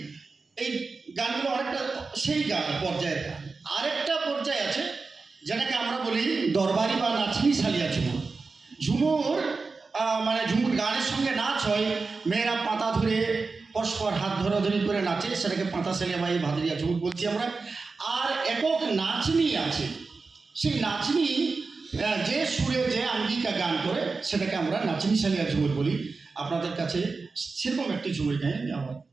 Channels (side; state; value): left; quieter; 4.2 dB